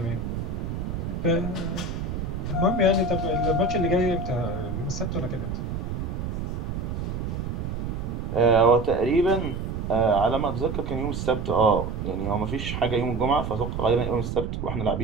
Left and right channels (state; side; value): noise; right; rumble, 4 dB below the sound